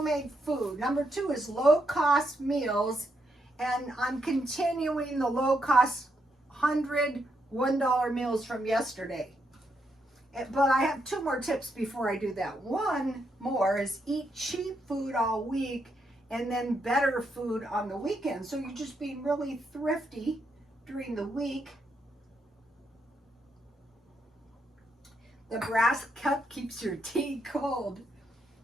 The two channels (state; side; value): normal; both; correlation 0.79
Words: food. Number 2 is low-cost meals. And I'm continuing the low-cost 100 $1 meals from yesterday. But I have 2 more tips before I do that. One more is eat cheap food all week and then better food on the weekend. So you're just being really thrifty during the week. The brass cup keeps your tea cold.